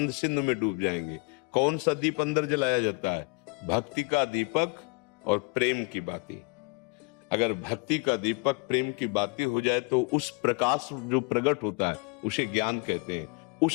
सिंधु में डूब जाएंगे। कौन सा दीप अंदर जलाया जाता है? भक्ति का दीपक और प्रेम की बाती। अगर भक्ति का दीपक प्रेम की बाती हो जाए तो उस प्रकाश जो प्रकट होता है उसे ज्ञान कहते हैं।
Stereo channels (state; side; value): quieter; right; 30.5 dB